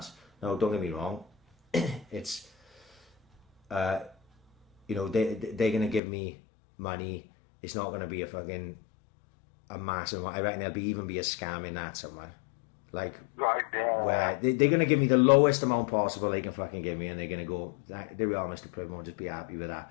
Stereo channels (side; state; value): right; drops out; at 6.0 s